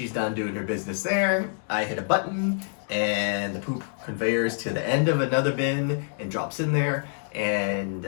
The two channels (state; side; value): silent; right; digital silence